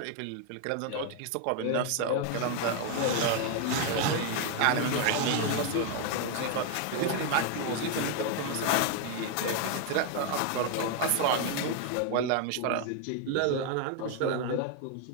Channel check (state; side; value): different; both; correlation 0.01